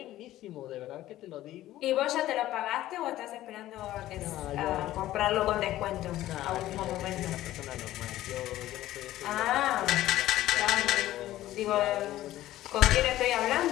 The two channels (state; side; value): quieter; right; 14.6 dB